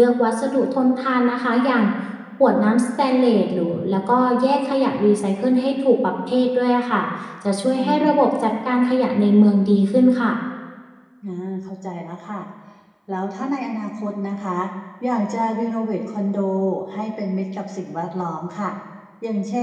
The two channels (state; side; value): identical; both; correlation 1.00